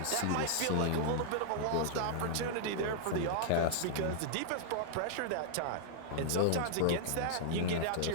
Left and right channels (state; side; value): different; both; correlation -0.01